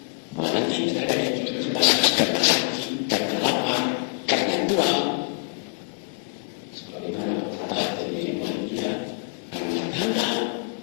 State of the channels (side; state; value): right; quieter; 36.3 dB